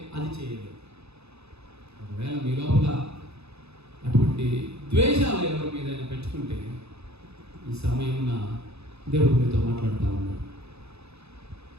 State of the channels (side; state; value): left; late; 0.79 ms